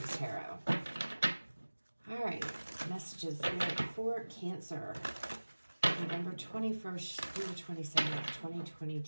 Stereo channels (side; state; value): both; inverted; correlation -1.00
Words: tarot. All right, messages for Cancer, November 21st through the 27th,